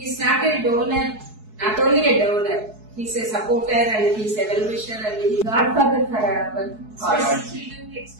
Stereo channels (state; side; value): late; left; 4.7 ms